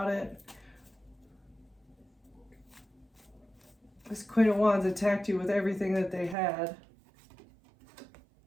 it. This Queen of Wands attacked you with everything that they had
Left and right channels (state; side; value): drops out; left; at 6.4 s